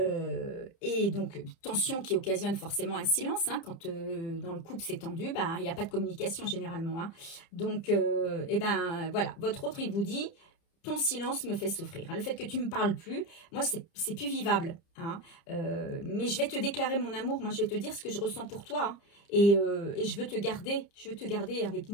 et donc tension qui occasionne forcément un silence, hein, quand dans le couple c'est tendu, bah, il n'y a pas de communication généralement. Hein. Donc, eh ben, voilà, votre autre, il vous dit, ton silence me fait souffrir. Hein. Le fait que tu ne me parles plus, moi, c'est plus vivable. Hein. Mais je vais te déclarer mon amour, moi, je vais te dire ce que je ressens pour toi. Hein. Et je veux te garder avec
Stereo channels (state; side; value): late; right; 30 ms